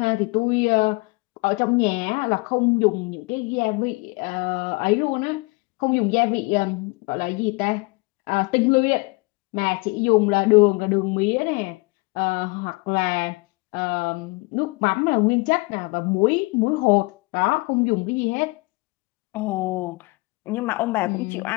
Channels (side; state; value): right; quieter; 26.4 dB